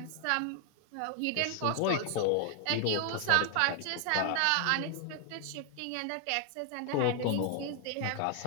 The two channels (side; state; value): both; different; correlation 0.00